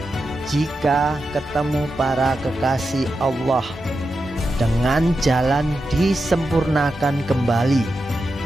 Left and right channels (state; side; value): normal; both; correlation 0.89